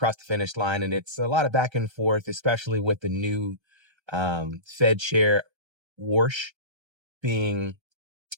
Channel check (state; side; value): late; left; 1.3 ms